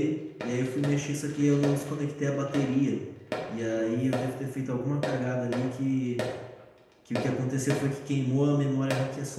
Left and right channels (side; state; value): both; identical; correlation 1.00